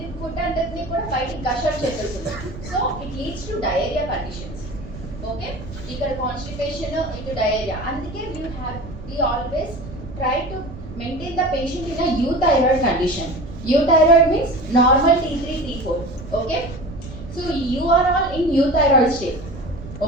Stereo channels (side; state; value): right; noise; rumble, 13 dB below the sound